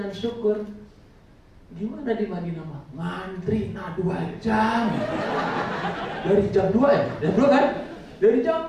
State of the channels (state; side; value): identical; both; correlation 1.00